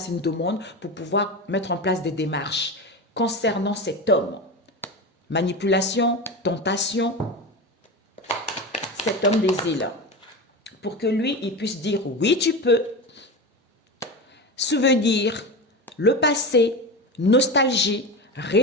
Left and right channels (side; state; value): both; normal; correlation 0.24